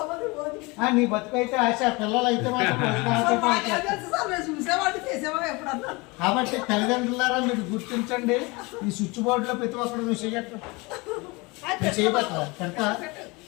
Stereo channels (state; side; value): quieter; right; 25.6 dB